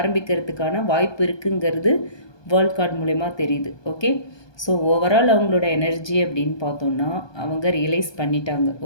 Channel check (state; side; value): late; right; 1.2 ms